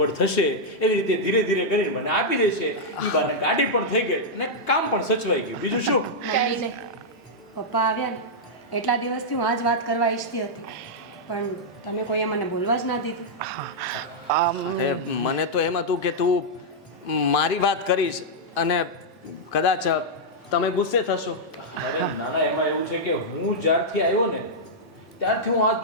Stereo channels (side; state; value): both; normal; correlation -0.06